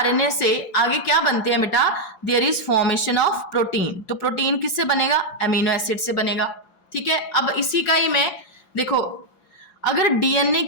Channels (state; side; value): late; right; 4.8 ms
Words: से आगे क्या बनते हैं बेटा? There is formation of protein. तो प्रोटीन किससे बनेगा? अमीनो एसिड से बनेगा। ठीक है, अब इसी का ही मैं देखो अगर डीएनए